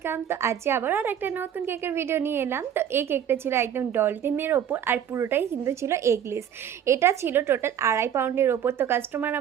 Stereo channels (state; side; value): quieter; left; 9.3 dB